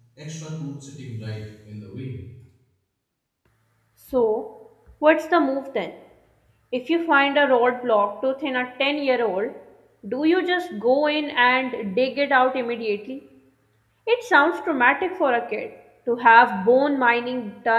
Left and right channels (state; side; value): identical; both; correlation 1.00